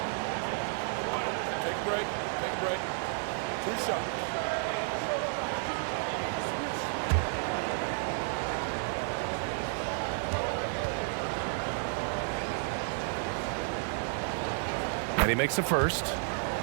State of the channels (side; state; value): left; silent; 57 dB below the other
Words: Take a break. Take a break. 2 shots. And he makes the first.